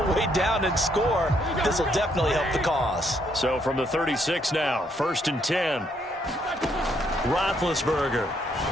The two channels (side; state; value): both; normal; correlation 0.72